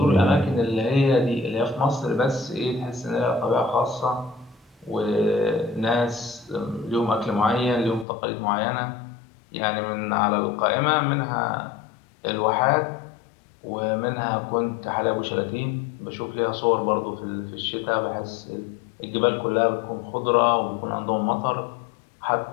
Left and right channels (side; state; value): right; drops out; at 8.1 s